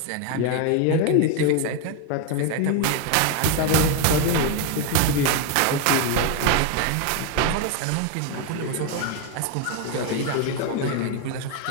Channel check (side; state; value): both; different; correlation 0.02